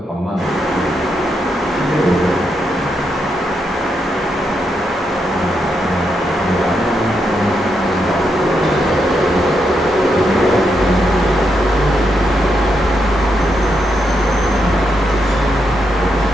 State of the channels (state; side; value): normal; both; correlation 0.81